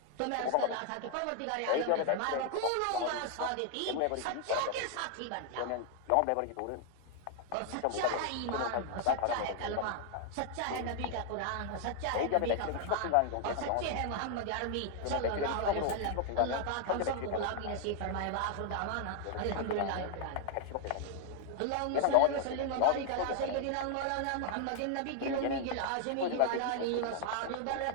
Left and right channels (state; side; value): different; both; correlation 0.00